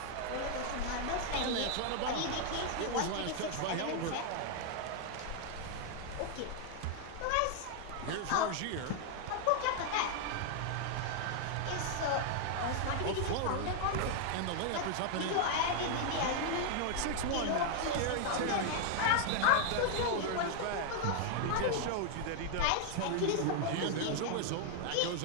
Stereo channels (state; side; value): different; both; correlation 0.00